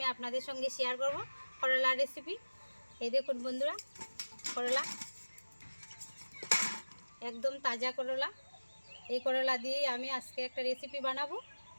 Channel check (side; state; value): both; inverted; correlation -1.00